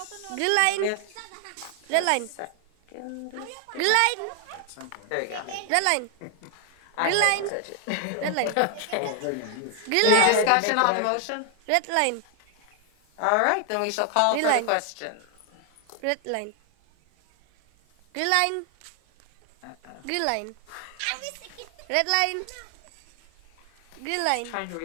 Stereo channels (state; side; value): different; both; correlation 0.00